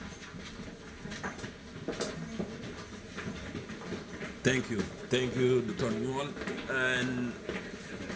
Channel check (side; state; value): both; identical; correlation 1.00